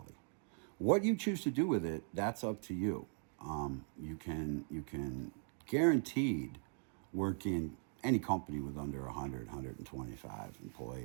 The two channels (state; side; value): silent; left; 51 dB below the other